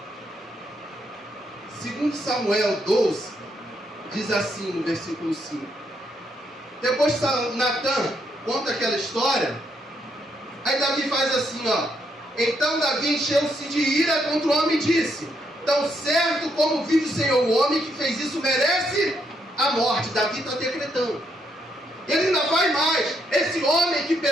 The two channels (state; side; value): normal; both; correlation 0.76